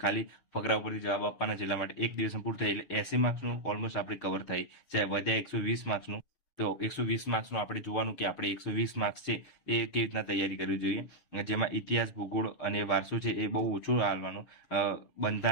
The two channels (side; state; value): right; late; 6.5 ms